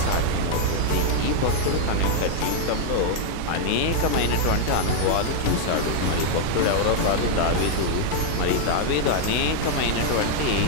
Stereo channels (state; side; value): different; both; correlation 0.00